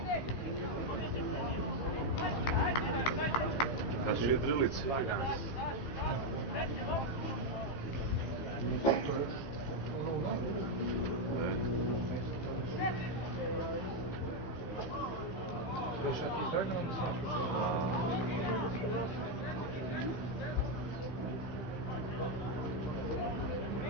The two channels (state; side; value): late; right; 15 ms